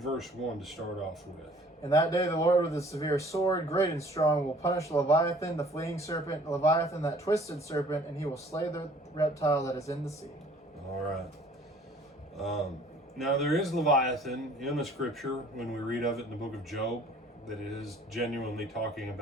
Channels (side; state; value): both; normal; correlation 0.54